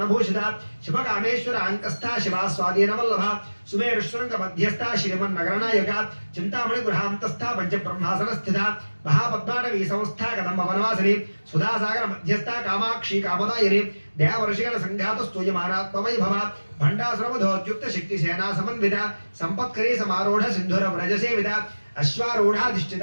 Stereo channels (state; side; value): inverted; both; correlation -1.00